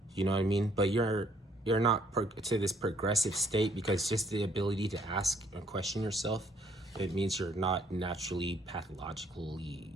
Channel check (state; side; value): normal; both; correlation 0.65